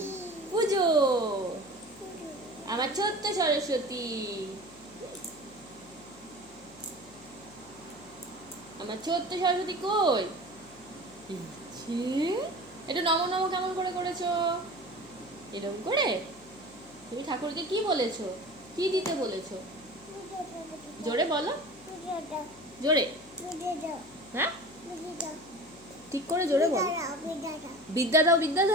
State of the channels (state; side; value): noise; left; hum, 25 dB below the sound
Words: পুজো আমার ছোট্ট সরস্বতী, আমার ছোট্ট সরস্বতী কই? এটা নম নম কেমন করে করেছো? এরকম করে তুমি ঠাকুরকে কি বলেছো? কি দিতে বলেছো? জোরে বলো, জোরে। হ্যাঁ ঠিক করে জোরে বলো। বিদ্যা দাও, বিদ্যা